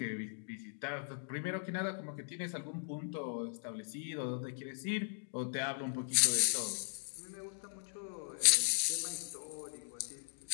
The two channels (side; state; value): right; silent; digital silence